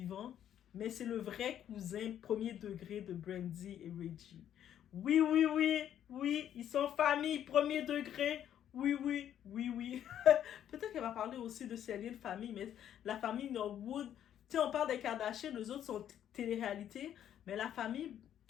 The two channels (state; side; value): quieter; right; 10.4 dB